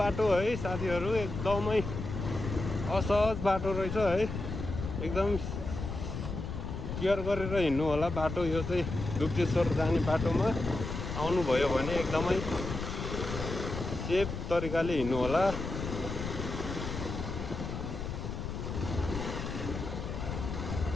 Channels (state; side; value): noise; left; rumble, 6 dB below the sound